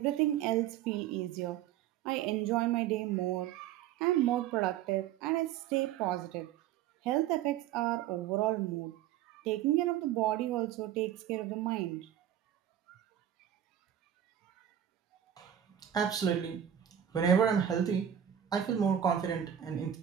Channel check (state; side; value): quieter; left; 10.4 dB